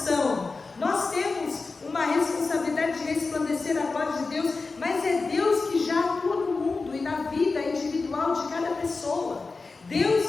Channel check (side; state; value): right; quieter; 4.0 dB